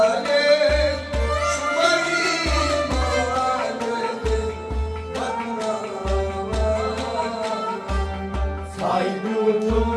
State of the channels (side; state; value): both; identical; correlation 1.00